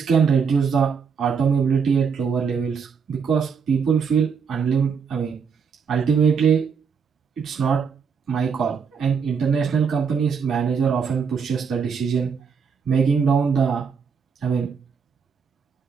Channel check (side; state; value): left; quieter; 6.2 dB